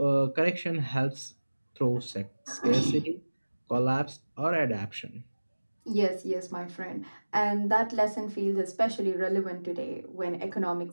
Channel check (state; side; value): inverted; both; correlation -1.00